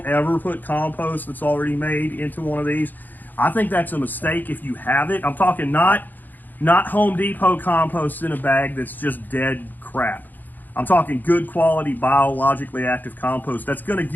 ever put compost that's already made into one of these. I think that's a mistake if you have it. I'm talking not Home Depot compost in a bag that's just dead crap. I'm talking good quality, biologically active compost that's going to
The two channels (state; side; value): late; right; 0.086 ms